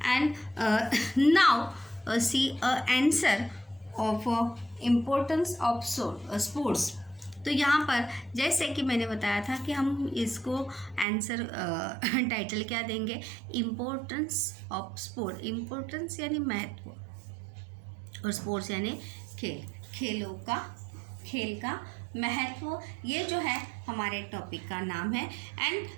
and now see answer of importance of sports. तो यहाँ पर जैसे कि मैंने बताया था कि हम इसको आंसर टाइटल क्या देंगे, इम्पोर्टेंस ऑफ स्पोर्ट। इम्पोर्टेंस यानी महत्व और स्पोर्ट्स यानी खेल का महत्व, ये जो है हमारे टॉपिक का नाम है। And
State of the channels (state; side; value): drops out; left; at 11.1 s